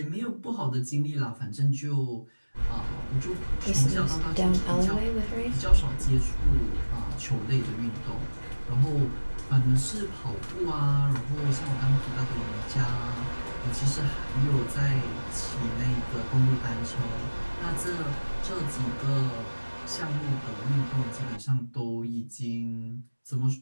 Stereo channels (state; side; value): inverted; both; correlation -1.00